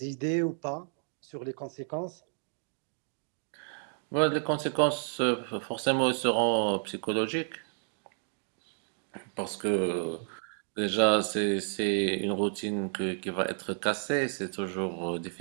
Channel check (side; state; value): left; silent; 57 dB below the other